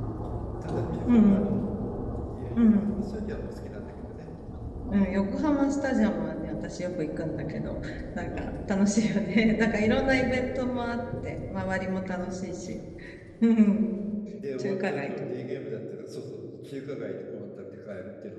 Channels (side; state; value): both; identical; correlation 1.00